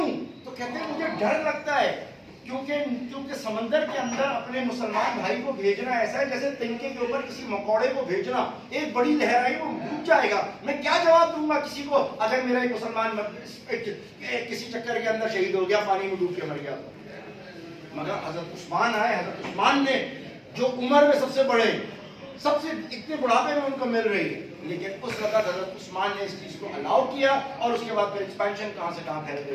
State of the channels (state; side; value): identical; both; correlation 1.00